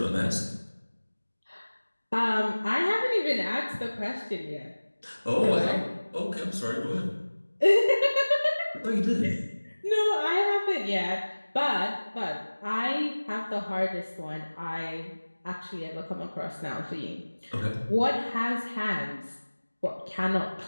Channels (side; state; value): both; inverted; correlation -1.00